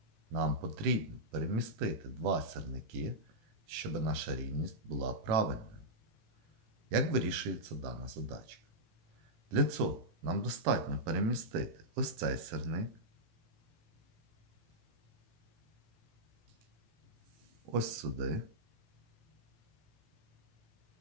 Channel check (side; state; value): left; late; 18 ms